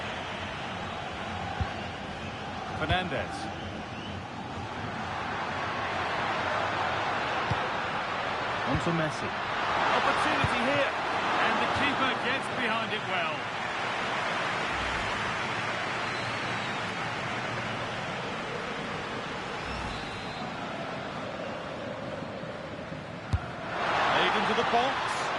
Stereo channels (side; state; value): both; identical; correlation 1.00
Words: Fernandez. On to Messi. Opportunity here. And the keeper gets behind it well. Played into the box.